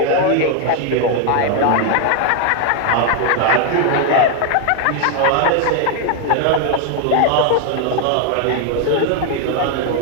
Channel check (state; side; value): different; both; correlation 0.00